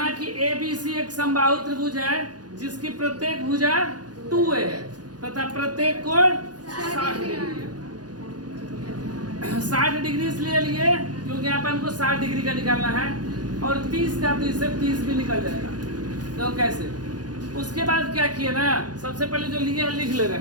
कि ABC एक समबाहु त्रिभुज है जिसकी प्रत्येक भुजा 2a है तथा प्रत्येक कोण 60 डिग्री है। 60 डिग्री इसलिए लिए क्योंकि यहाँ पर हमको 60 डिग्री का निकालना है, और 30 का तो इससे 30 भी निकल जाएगा। तो कैसे, उसके बाद क्या किए ना, सबसे पहले जो लिए लिख ले रहे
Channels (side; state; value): left; late; 0.69 ms